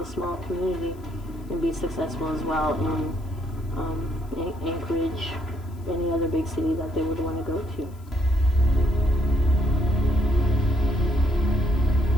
small community and be successful as well in Anchorage, any other big city that they would want to go to.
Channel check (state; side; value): noise; left; hiss, 30 dB below the sound